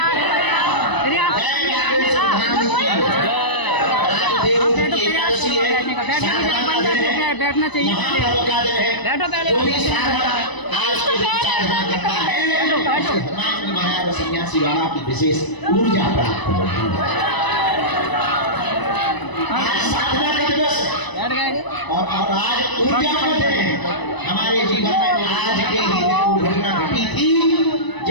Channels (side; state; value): right; late; 1.0 ms